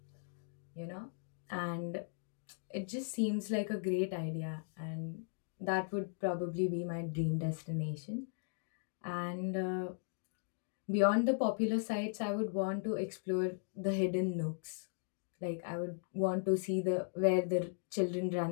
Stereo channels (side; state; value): right; silent; digital silence